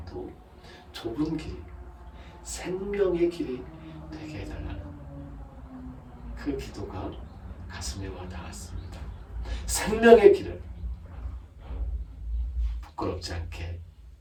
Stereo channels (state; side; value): identical; both; correlation 1.00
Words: 좁은 길, 생명의 길이 되게 해달라는 그 기도가 가슴에 와 닿았습니다. 생명의 길을 부끄럽지 않게